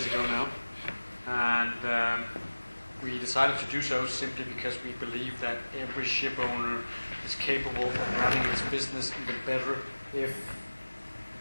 ago now, and we decided to do so simply because we believe that every ship owner is capable of running its business even better if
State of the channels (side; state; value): both; inverted; correlation -1.00